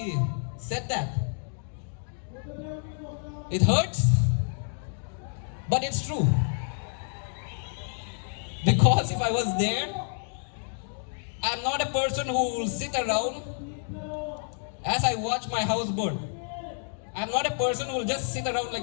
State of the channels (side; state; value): right; silent; digital silence